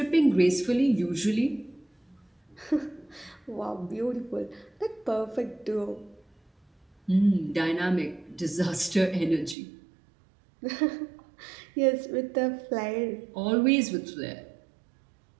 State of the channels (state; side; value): drops out; left; at 9.6 s